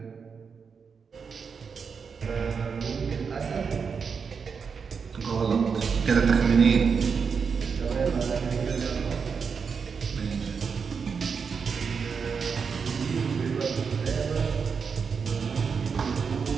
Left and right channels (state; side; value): quieter; left; 5.9 dB